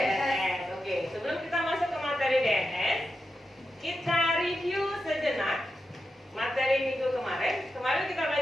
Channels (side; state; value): both; normal; correlation 0.88